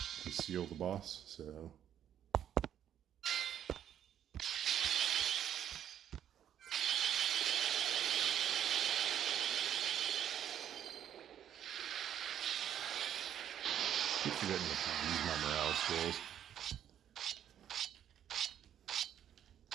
to seal the boss. So keep forgetting to use my morale skills.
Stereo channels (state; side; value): quieter; left; 10.0 dB